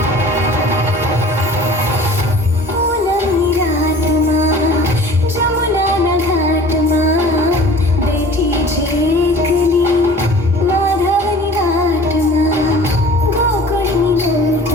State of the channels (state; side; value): normal; both; correlation 0.45